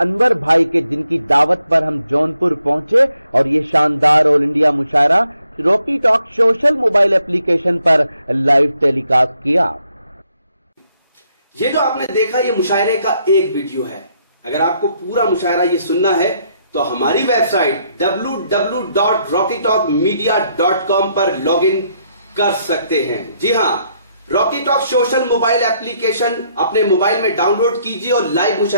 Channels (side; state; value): both; inverted; correlation -0.73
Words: भाई के, जिनकी दावत पर हम जौनपुर पहुंचे और ये शानदार all India mushaira Rocky talk social mobile application पर लाइव टेलीकास्ट किया। ये जो आपने देखा ये मुशायरे का एक वीडियो है। अगर आपको पूरा मुशायरा ये सुनना है तो हमारी वेबसाइट www.rockytalkmedia.com पर लॉगिन कर सकते हैं। जी हां, Rocky talk social mobile application अपने मोबाइल में डाउनलोड कीजिए और लाइव